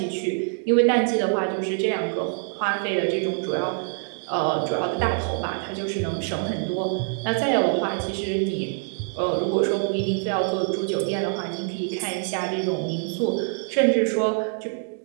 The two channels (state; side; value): silent; left; 62 dB below the other